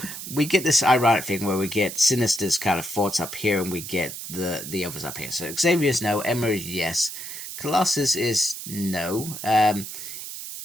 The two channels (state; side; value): noise; right; hiss, 9 dB below the sound